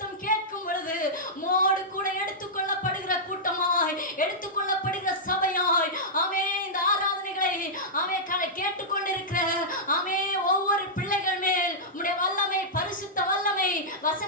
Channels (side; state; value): both; normal; correlation -0.11